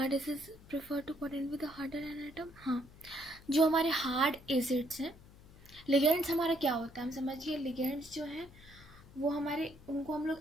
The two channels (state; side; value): noise; left; hum, 22 dB below the sound